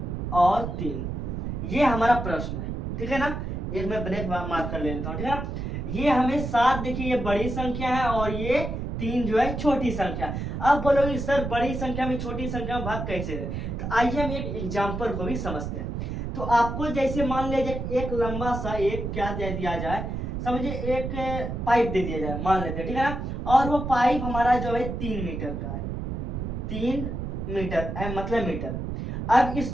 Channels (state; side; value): noise; right; rumble, 4 dB below the sound